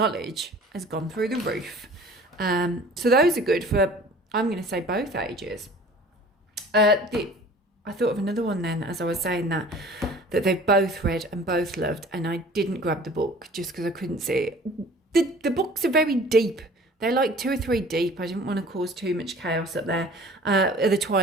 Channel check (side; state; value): both; normal; correlation 0.47